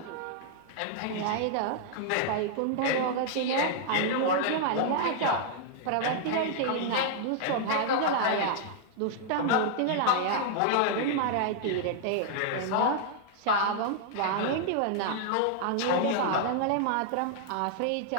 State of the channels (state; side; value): different; both; correlation -0.01